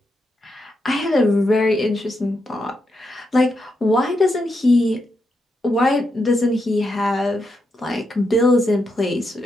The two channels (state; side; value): normal; both; correlation 0.83